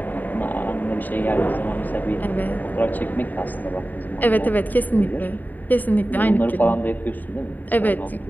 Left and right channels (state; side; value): late; right; 0.085 ms